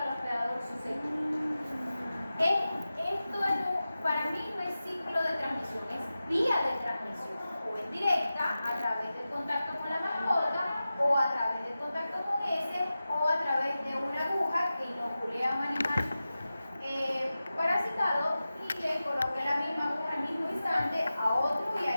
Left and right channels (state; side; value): inverted; both; correlation -0.94